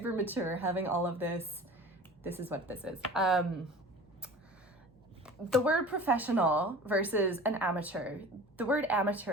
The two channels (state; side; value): normal; both; correlation 0.39